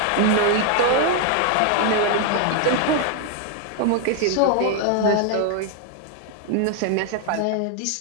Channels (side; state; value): both; different; correlation 0.00